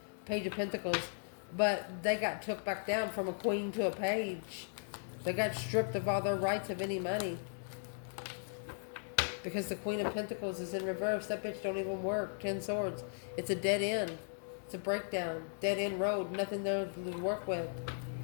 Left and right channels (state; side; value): silent; right; digital silence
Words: Page of Pentacles. But they got took back down from a queen to a page. They got stripped of all their rights of any money. Because the Queen of Pentacles is in reverse. That bitch don't even work. 10 Swords. It's a dead end. It's a breakdown. Dead end road. Nothing there to work with.